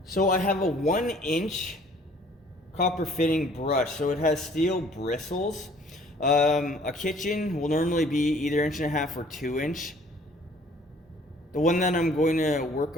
So I have a 1-inch copper fitting brush. So it has steel bristles. A kitchen will normally be either 1.5 or 2-inch. The one that I'm going to work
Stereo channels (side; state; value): both; normal; correlation 0.56